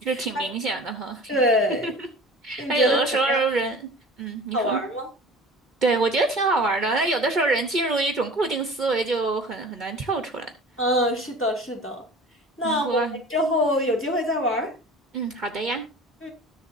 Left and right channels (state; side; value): normal; both; correlation 0.41